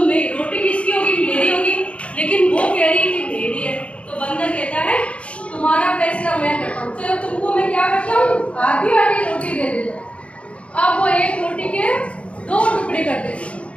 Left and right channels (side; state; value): right; late; 0.061 ms